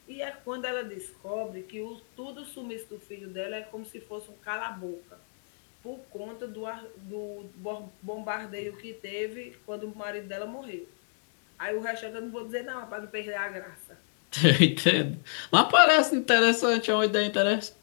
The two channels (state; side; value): silent; right; digital silence